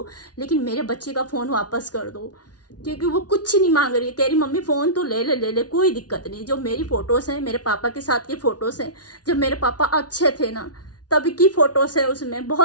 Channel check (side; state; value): right; late; 0.69 ms